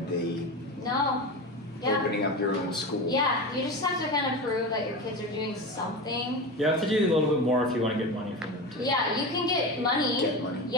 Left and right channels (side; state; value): both; normal; correlation 0.25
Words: the opening up your own school. Yeah, you just have to kind of prove that your kids are doing something. You have to do a little bit more if you want to get money from them too. Yeah, you can get money. Get money.